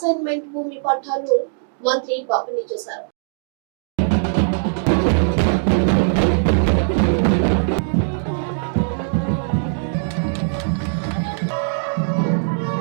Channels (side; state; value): left; silent; digital silence